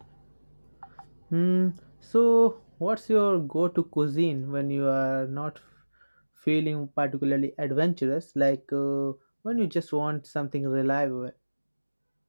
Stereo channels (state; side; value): inverted; both; correlation -1.00